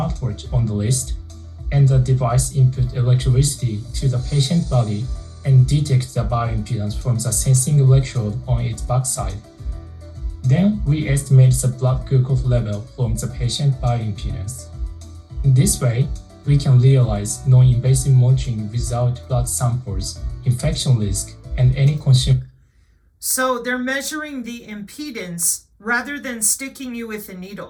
on the list, and the device input electricity to the patient body and detect the bioimpedance from the sensing electrode on its backside. Then we estimate the blood glucose level from the patient bioimpedance. In this way, we can realize non-invasive monitoring without blood samples, infection risk, and any consumer. So they're measuring the impedance rather than sticking you with a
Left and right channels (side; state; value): both; identical; correlation 1.00